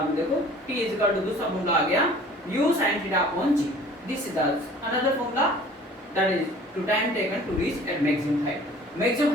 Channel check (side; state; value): both; normal; correlation 0.49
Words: में देखो t इज इक्वल टू दूसरा फॉर्मूला आ गया u sin theta upon g। This is the another formula that is to time taken to reach at maximum height. Maximum